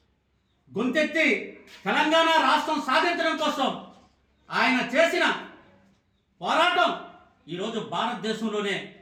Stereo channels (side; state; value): both; identical; correlation 1.00